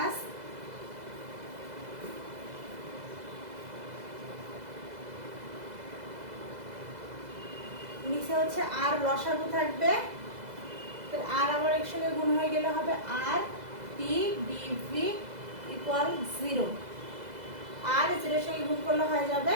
নিচে হচ্ছে আর লসাগু থাকবে, তো আর আবার একসঙ্গে গুণ হয়ে গেলে হবে আর পি ডিভি ইকুয়াল 0। আর 0 এর সঙ্গে গুণ করলে হয়ে যাবে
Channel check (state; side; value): late; left; 2.0 ms